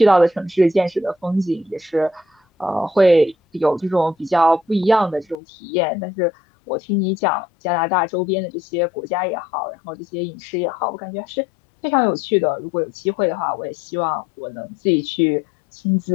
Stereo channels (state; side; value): drops out; right; at 5.4 s